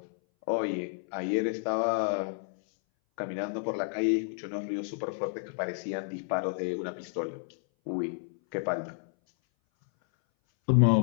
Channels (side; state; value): right; silent; 57 dB below the other